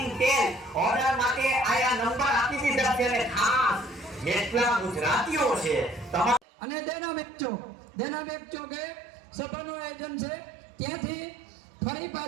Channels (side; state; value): left; drops out; at 6.4 s